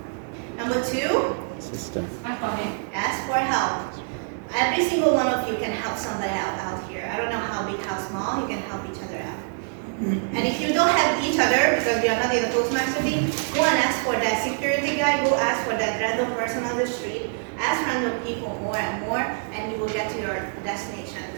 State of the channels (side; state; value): left; silent; 62 dB below the other